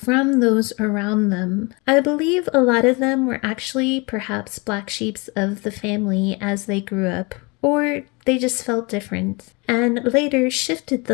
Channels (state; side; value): quieter; right; 28.2 dB